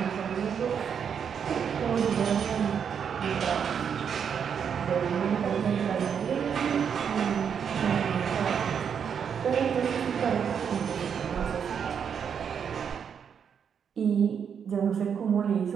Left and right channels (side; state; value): left; quieter; 7.4 dB